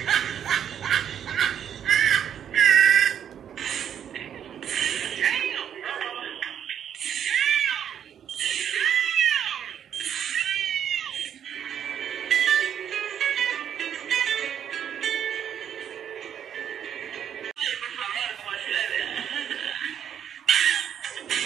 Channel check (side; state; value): left; quieter; 9.1 dB